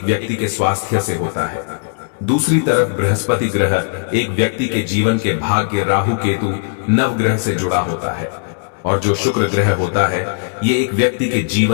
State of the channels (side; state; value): right; silent; digital silence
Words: व्यक्ति के स्वास्थ्य से होता है। दूसरी तरफ बृहस्पति ग्रह एक व्यक्ति के जीवन के भाग्य, राहु केतु, नवग्रह से जुड़ा होता है और जो शुक्र ग्रह होता है, ये एक व्यक्ति के